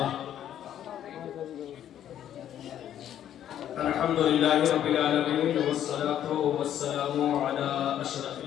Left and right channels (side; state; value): right; quieter; 10.7 dB